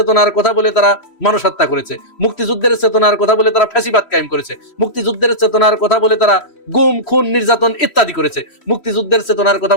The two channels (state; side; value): late; right; 3.1 ms